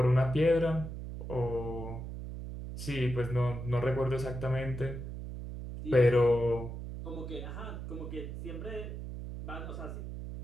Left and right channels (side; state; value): right; noise; hum, 8 dB below the sound